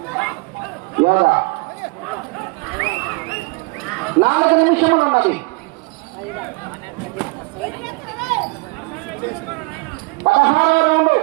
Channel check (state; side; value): quieter; left; 26.6 dB